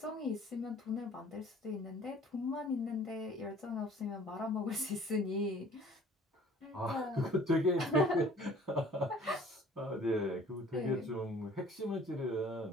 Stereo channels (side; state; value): both; normal; correlation 0.52